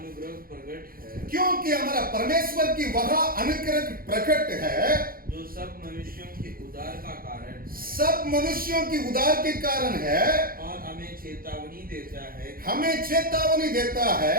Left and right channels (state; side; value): late; left; 0.42 ms